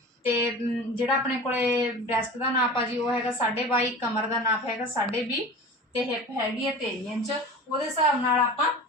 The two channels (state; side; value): normal; both; correlation 0.35